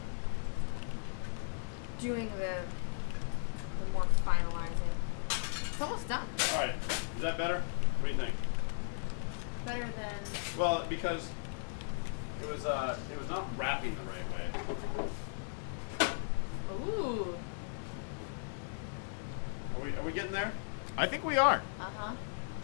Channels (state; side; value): silent; right; digital silence